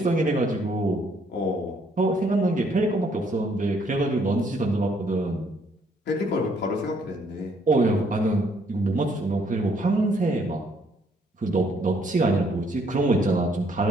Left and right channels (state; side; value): normal; both; correlation 0.67